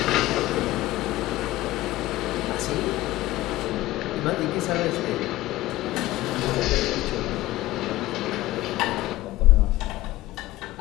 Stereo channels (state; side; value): quieter; right; 17.1 dB